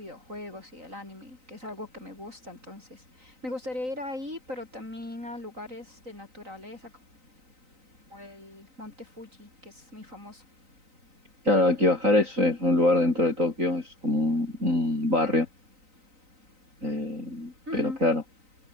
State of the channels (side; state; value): left; late; 3.9 ms